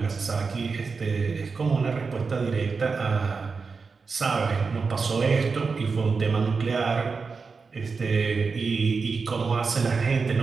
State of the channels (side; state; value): left; quieter; 4.8 dB